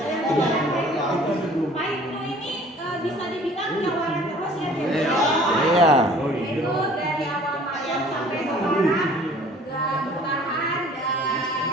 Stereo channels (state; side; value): normal; both; correlation 0.51